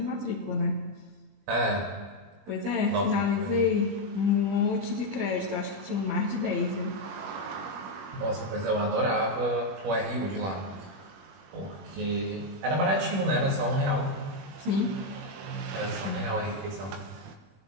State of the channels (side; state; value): left; late; 21 ms